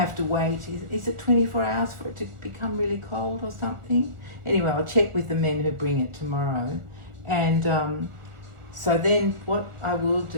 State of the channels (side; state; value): left; late; 1.4 ms